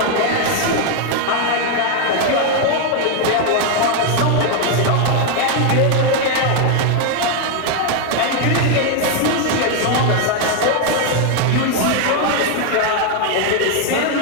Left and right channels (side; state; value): both; different; correlation 0.01